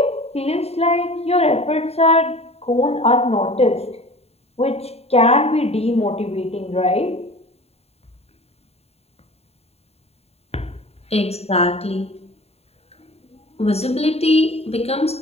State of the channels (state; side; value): late; right; 0.30 ms